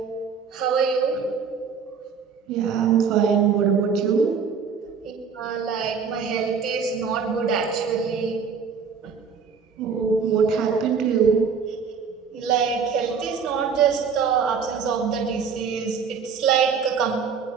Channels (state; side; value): quieter; left; 6.1 dB